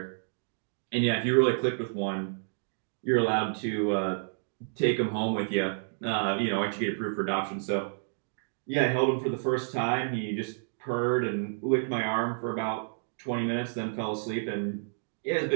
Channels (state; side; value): silent; left; digital silence